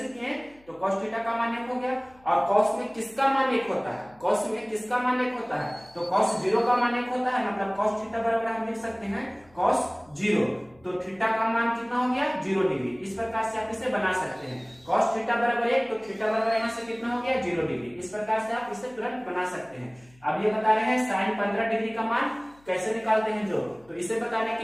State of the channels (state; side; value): noise; left; hum, 29 dB below the sound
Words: किए तो cos थीटा का मान 1 हो गया। और cos में किसका मान 1 होता है cos में किसका मान 1 होता है तो cos 0 का मान 1 होता है मतलब cos थीटा बराबर हम लिख सकते हैं cos 0। तो थीटा का मान कितना हो गया 0 डिग्री। इस प्रकार से आप इसे बना सकते हैं cos थीटा बराबर 1 तो थीटा बराबर यहाँ से कितना हो गया 0 डिग्री। इस प्रकार से आप इसे तुरंत बना सकते हैं। अब ये बता रहे हैं साइन 15 डिग्री का मान कैसे निकालते हैं जो, तो इसे बताने के